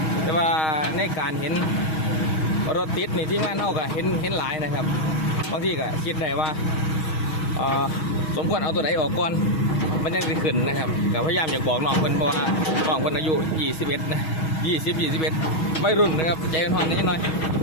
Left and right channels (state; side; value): late; right; 6.3 ms